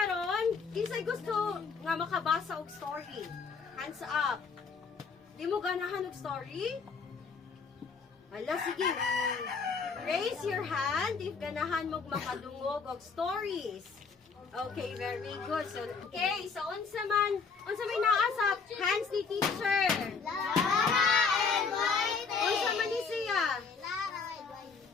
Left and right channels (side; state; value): right; quieter; 5.2 dB